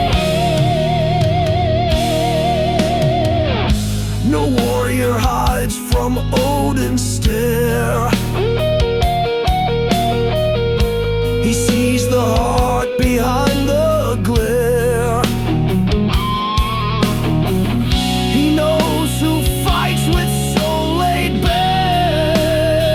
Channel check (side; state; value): both; identical; correlation 1.00